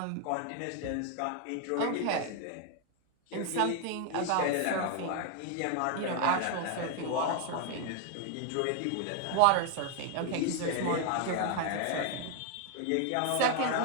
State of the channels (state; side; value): different; both; correlation 0.00